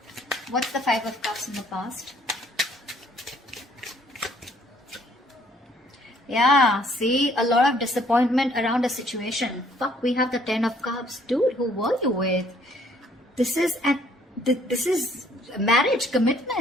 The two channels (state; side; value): normal; both; correlation 0.62